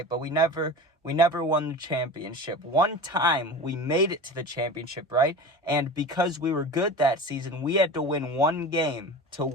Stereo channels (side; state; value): both; normal; correlation 0.32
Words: But we never won the championship. One time we made it to the championship, right? And because we were good that season, we had to win one game to